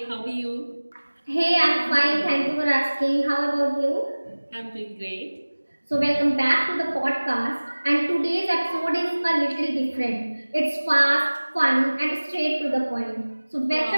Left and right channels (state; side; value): inverted; both; correlation -1.00